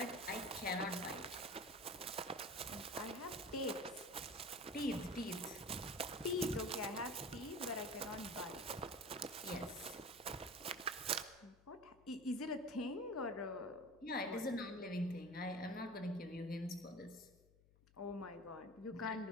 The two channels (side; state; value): left; noise; hum, 26 dB below the sound